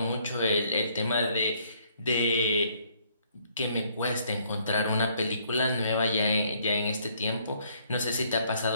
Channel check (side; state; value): both; inverted; correlation -0.66